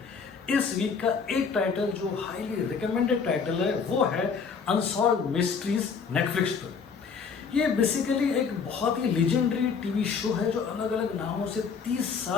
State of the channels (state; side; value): quieter; right; 5.8 dB